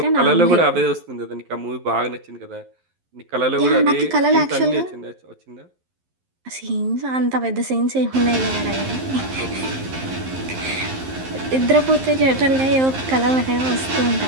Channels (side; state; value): left; late; 11 ms